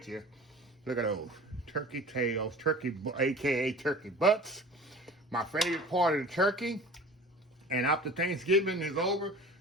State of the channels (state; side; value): normal; both; correlation 0.40